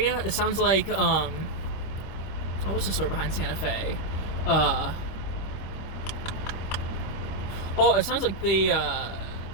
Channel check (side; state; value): right; late; 26 ms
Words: It sounds like what's the story behind Santa Fe? It sounds like they